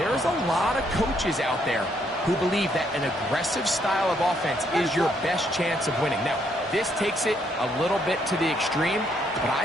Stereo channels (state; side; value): normal; both; correlation 0.72